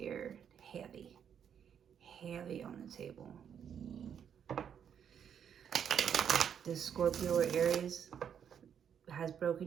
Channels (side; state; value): left; quieter; 8.3 dB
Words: Heavy. Heavy on the table. This Scorpio or Aries has broken